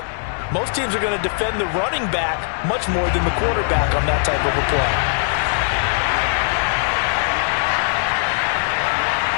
most teams are going to defend the running back much more than the quarterback on that type of a play.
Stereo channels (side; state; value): right; silent; digital silence